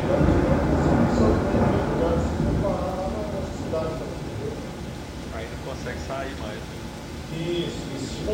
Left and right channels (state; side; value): identical; both; correlation 1.00